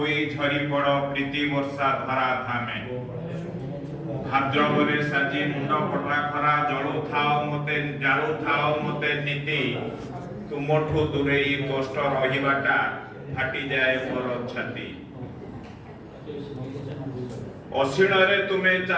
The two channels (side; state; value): both; identical; correlation 1.00